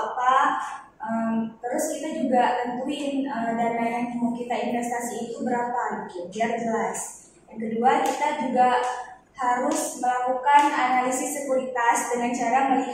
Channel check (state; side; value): identical; both; correlation 1.00